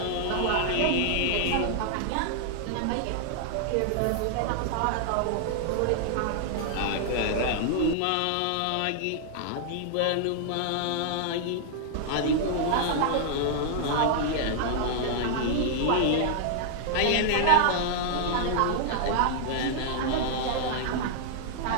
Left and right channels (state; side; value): different; both; correlation -0.01